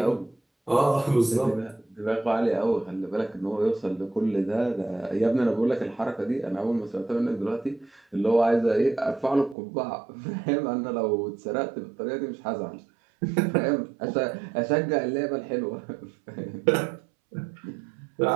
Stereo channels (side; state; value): left; drops out; at 9.6 s